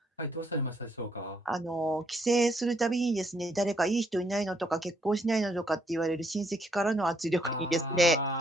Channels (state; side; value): normal; both; correlation 0.72